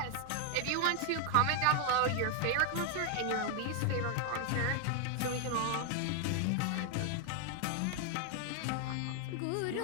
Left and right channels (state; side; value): different; both; correlation 0.01